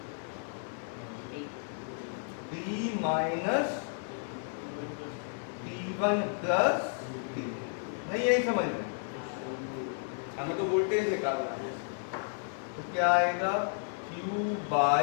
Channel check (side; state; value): right; silent; 56 dB below the other